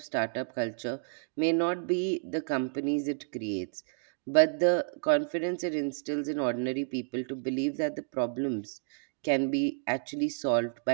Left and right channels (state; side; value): silent; left; digital silence